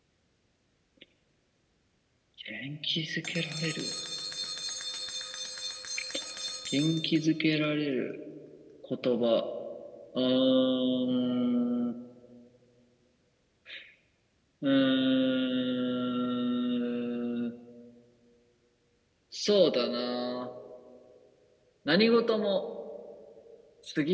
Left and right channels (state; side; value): identical; both; correlation 1.00